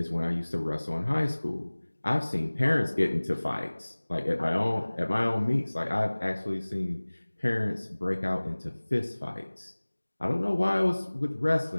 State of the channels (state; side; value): inverted; both; correlation -1.00